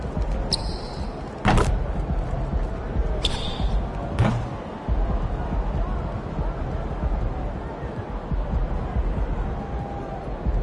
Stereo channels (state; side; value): identical; both; correlation 1.00